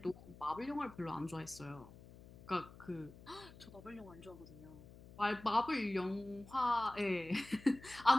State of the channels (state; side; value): noise; left; hum, 19 dB below the sound